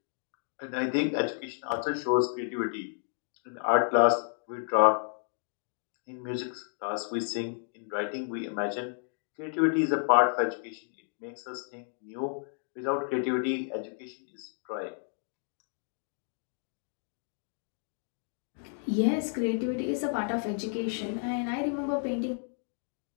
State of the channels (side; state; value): right; silent; 57 dB below the other